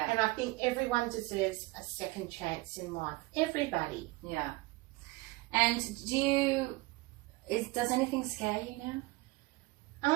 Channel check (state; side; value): quieter; left; 22.0 dB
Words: And I think everyone deserves a second chance in life. Everybody. Yeah. And does anything scare you